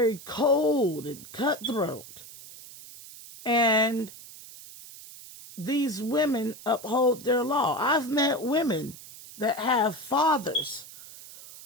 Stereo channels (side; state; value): right; noise; hiss, 17 dB below the sound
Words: cold and cutthroat. And these women uphold their law. I've met women that have fathers